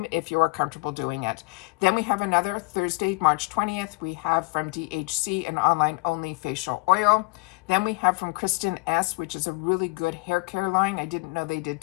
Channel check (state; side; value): quieter; right; 25.7 dB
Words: if you are comfortable doing it. Then we have another Thursday, March 20th, we have from DHC an online only facial oil. Then we have from Kristen S, which is a really good hair care line. I didn't know they did